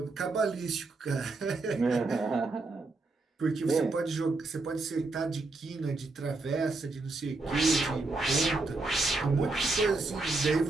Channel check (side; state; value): left; quieter; 3.4 dB